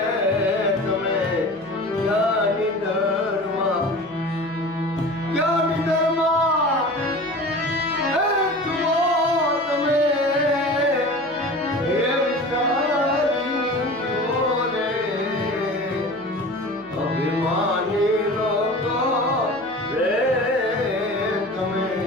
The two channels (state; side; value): noise; left; hum, 26 dB below the sound